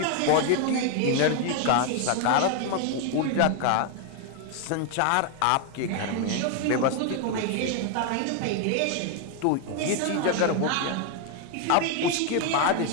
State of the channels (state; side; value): different; both; correlation 0.01